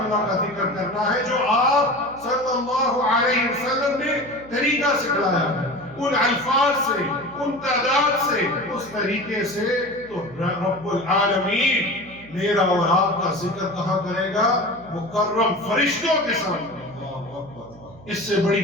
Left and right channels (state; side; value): noise; right; hum, 21 dB below the sound